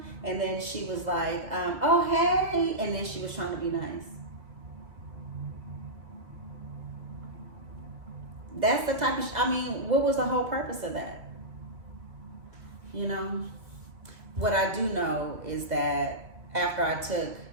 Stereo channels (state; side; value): late; left; 2.4 ms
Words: and then she was like, "Oh, hey," and then she was trying to be nice. That's the type of, I mean, what was the whole purpose of that? You know? What I do know is that after I took